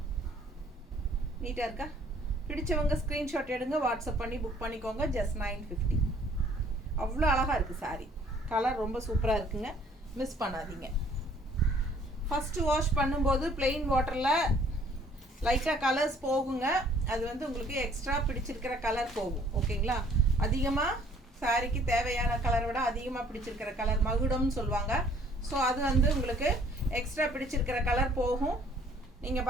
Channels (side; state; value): both; normal; correlation 0.59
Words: நீட்டாக இருக்கா? பிடிச்சவங்க ஸ்க்ரீன்ஷாட் எடுங்க, வாட்ஸ்அப் பண்ணி புக் பண்ணிக்கோங்க. ஜஸ்ட் 950. அவ்வளோ அழகாக இருக்குது சாரீ. கலர் ரொம்ப சூப்பராக இருக்குங்க, மிஸ் பண்ணாதீங்க. ஃபஸ்ட்டு வாஷ் பண்ணும்போது பிளெயின் வாட்டரில் லைட்டாக கலர்ஸ் போகுங்க. அது வந்து உங்களுக்கு எக்ஸ்ட்ரா பிடிச்சிருக்கிற கலர் போகும். ஓகேங்களா? அதிகமாக சாரீக்கு தேவையான கலரை விட அதிகமாக பிடிச்சிருக்கிற கலர் மகுடம்னு சொல்லுவாங்க. ஸோ அது வந்து உங்களுக்கு எக்ஸ்ட்ரா பிடிச்சிருக்கிற கலர் போகும். நீங்கள்